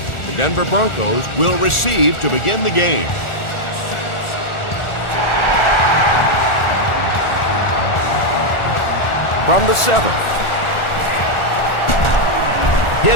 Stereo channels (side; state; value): right; late; 1.4 ms